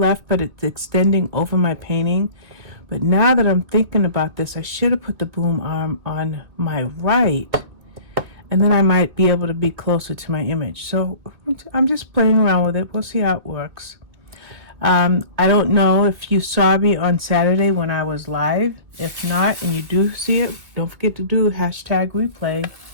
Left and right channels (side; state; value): left; late; 2.4 ms